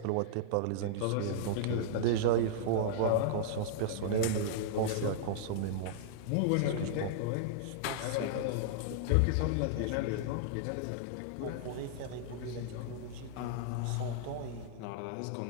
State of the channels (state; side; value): different; both; correlation -0.01